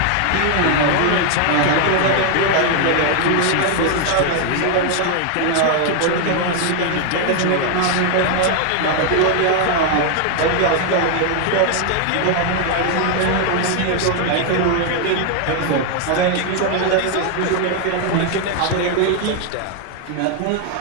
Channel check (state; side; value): different; both; correlation 0.00